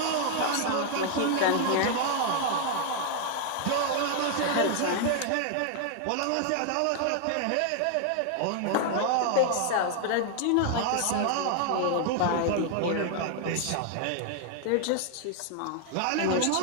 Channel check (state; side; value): different; both; correlation 0.00